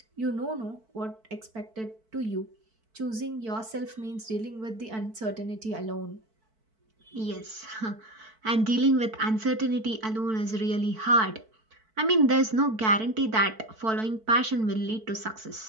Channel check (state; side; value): late; left; 4.5 ms